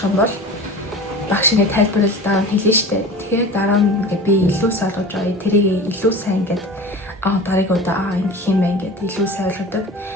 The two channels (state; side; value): normal; both; correlation 0.36